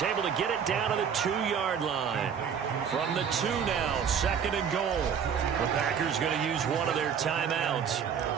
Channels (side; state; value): left; quieter; 7.4 dB